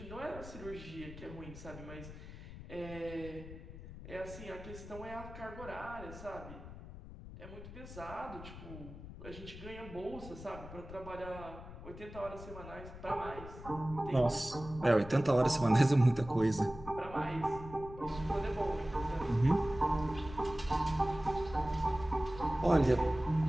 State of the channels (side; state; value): left; noise; rumble, 13 dB below the sound